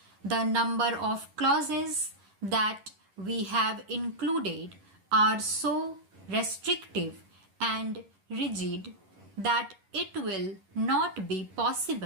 The number of clauses that we have included are so restrictive and rigid that it will not be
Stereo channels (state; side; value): late; left; 11 ms